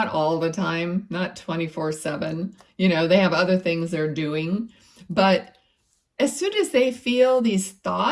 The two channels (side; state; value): both; identical; correlation 1.00